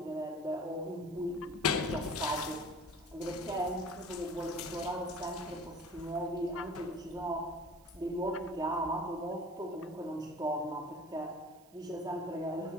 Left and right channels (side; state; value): right; noise; hiss, 27 dB below the sound